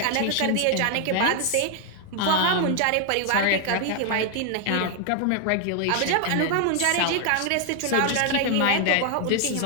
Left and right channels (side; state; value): both; different; correlation 0.00